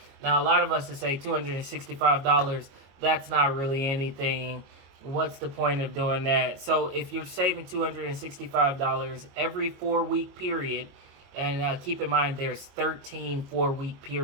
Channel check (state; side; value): late; left; 22 ms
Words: Now, a lot of us would say $265, that's not really anything. What's the point of doing that? So if you're saving $265 every 4-week period, and keep in mind there's 13 4-week